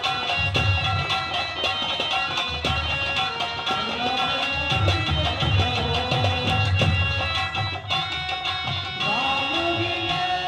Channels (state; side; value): identical; both; correlation 1.00